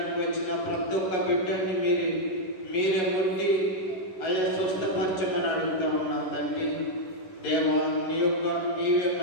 వచ్చిన ప్రతి ఒక్క బిడ్డని మీరే ఉండి అయ్యా స్వస్థపరచమని అడుగుతా ఉన్నాం తండ్రి. దేవా, నీవే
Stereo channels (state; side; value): late; right; 11 ms